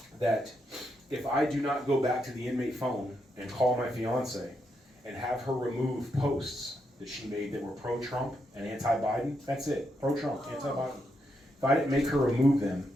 that if I do not go back to the inmate phone and call my fiance and have her remove posts that she made that were pro-Trump and anti-Biden, that's it, pro-Trump, anti-Biden. If I didn't make her remove them,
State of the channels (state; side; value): normal; both; correlation 0.81